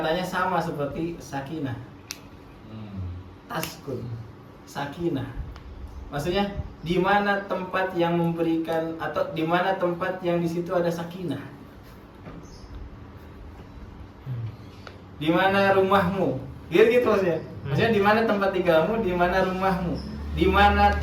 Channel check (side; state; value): both; identical; correlation 1.00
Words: sama seperti sakinah. Taskun, sakinah. Maksudnya di mana tempat yang memberikan atau di mana tempat yang di situ ada sakinah? Di mana rumahmu? Gitu maksudnya. Maksudnya di mana tempat tinggalmu, di mana rumahmu? Di mana